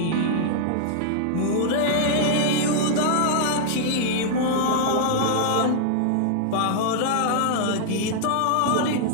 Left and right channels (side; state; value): both; different; correlation -0.01